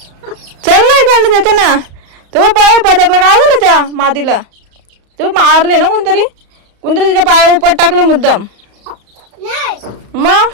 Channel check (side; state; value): left; late; 35 ms